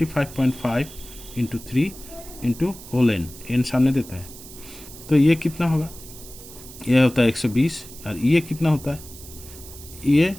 into 3 into whole n सामने देता है। तो ये कितना होगा? ये होता है 120 और ये कितना होता है? ये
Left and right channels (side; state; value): right; noise; hiss, 16 dB below the sound